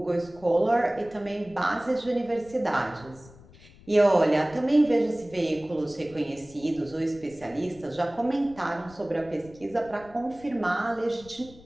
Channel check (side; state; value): left; noise; rumble, 22 dB below the sound